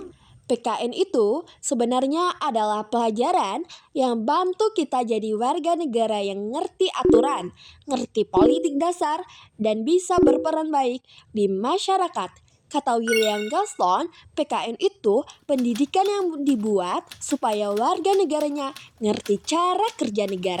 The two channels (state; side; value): identical; both; correlation 1.00